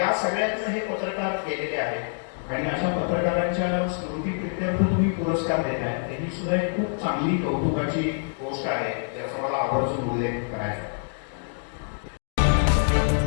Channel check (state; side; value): silent; right; digital silence